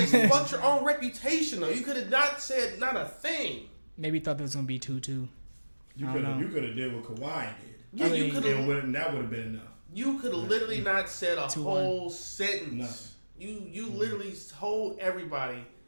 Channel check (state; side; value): inverted; both; correlation -1.00